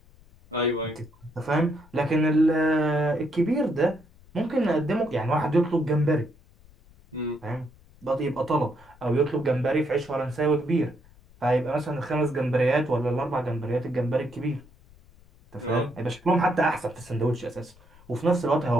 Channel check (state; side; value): noise; left; rumble, 26 dB below the sound